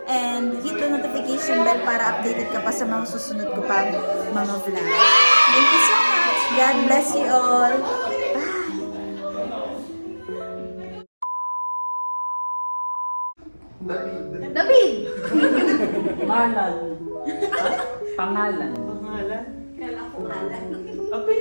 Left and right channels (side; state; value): both; inverted; correlation -1.00